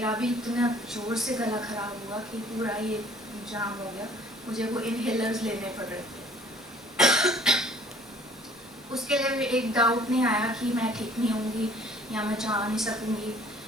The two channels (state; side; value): normal; both; correlation 0.55